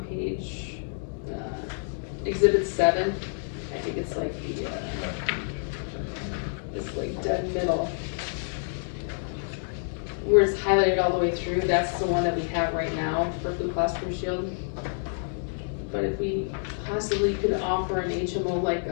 page, exhibit 7, I think it's like the, it's like dead middle. Where it's highlighted all the way through, that's the one that we have right now for Blue Cross Blue Shield. But if we possibly could offer an HMO like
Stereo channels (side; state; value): right; silent; digital silence